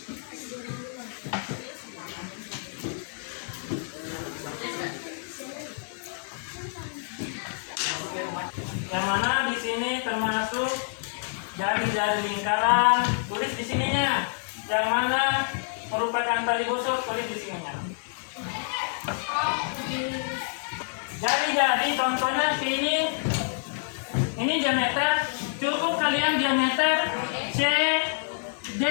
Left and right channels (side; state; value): right; silent; 60 dB below the other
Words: Yang mana di sini termasuk jari-jari lingkaran, tulis di sininya. Yang mana merupakan tali busuk, tulis di sininya. Jari-jari contohnya ini diameter, cukup kalian diameter CD,